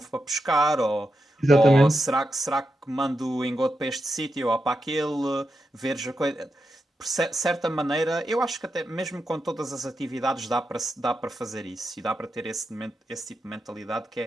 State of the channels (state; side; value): normal; both; correlation 0.87